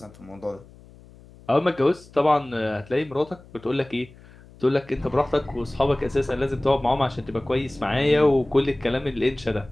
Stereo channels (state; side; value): noise; left; hum, 23 dB below the sound